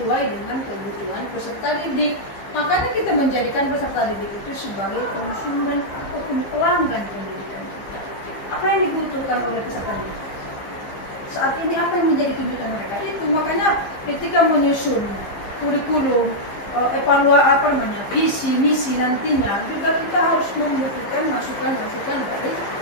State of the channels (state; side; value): late; right; 15 ms